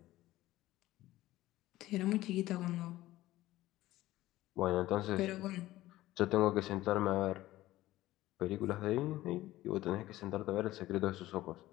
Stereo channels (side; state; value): right; quieter; 16.2 dB